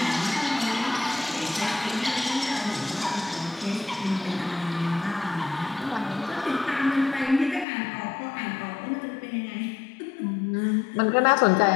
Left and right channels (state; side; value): drops out; right; at 7.7 s